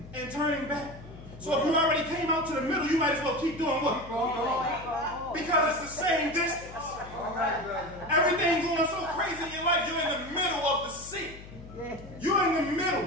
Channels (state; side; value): noise; left; hum, 16 dB below the sound